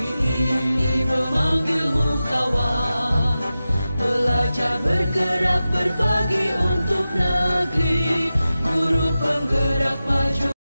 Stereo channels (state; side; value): inverted; both; correlation -0.94